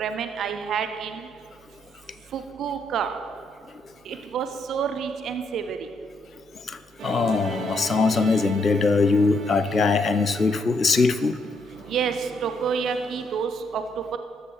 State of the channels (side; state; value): both; normal; correlation 0.74